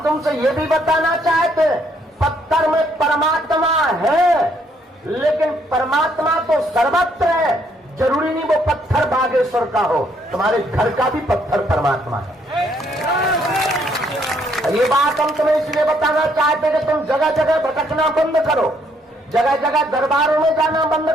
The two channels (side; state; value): both; normal; correlation 0.69